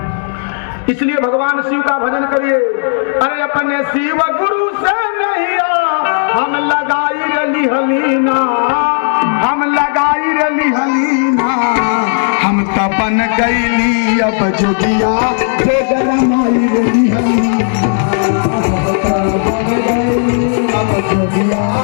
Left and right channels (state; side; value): silent; right; digital silence